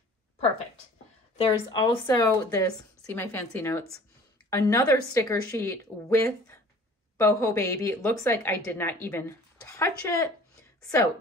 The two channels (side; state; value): both; normal; correlation 0.48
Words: Perfect. There's also this, see my fancy notes, another sticker sheet with Boho Baby. It looks like I did not even touch it. So